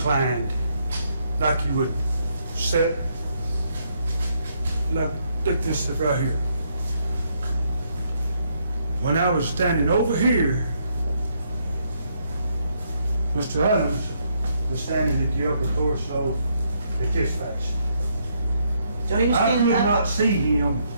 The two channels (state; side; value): inverted; both; correlation -0.74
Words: like you would set, like this right here. When I was standing over here, Mr. Adams was standing at the upper torso at this fashion. So he was I could standing not up. see him